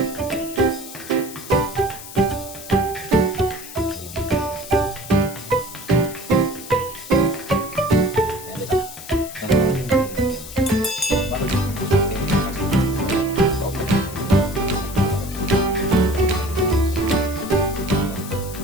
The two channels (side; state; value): left; noise; hiss, 14 dB below the sound